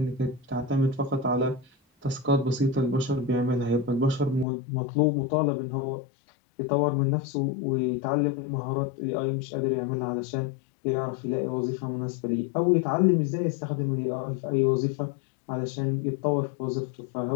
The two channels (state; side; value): drops out; right; at 4.5 s